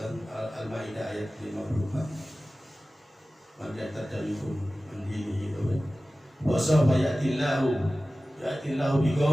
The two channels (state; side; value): normal; both; correlation 0.96